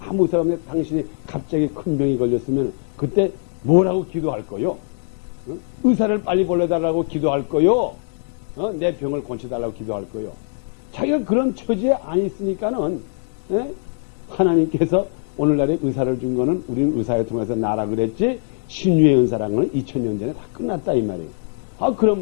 의사가 없는데 당신이 갑자기 큰 병이 걸렸으면 그때 뭐라고 기도할 거요? 의사를 빨리 보내달라고 기도할 거요? 내 병을 고쳐달라고 기도할 거요? 자기가 그런 처지에 안 있으니까는 예? 하나님께서 오늘날에 의사를 준 거는 우리는 의사를 통해서 나라 그랬지 신유의 은사라는 거는 2000년 전에 다 끝났다 이 말이에요. 그런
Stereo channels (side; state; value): right; silent; 62 dB below the other